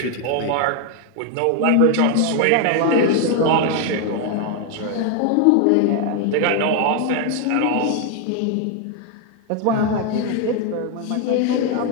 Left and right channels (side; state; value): both; different; correlation 0.01